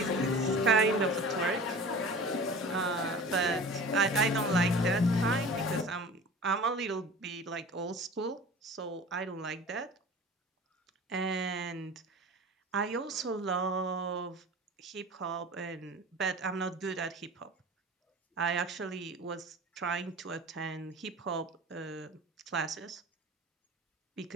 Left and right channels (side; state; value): both; normal; correlation 0.39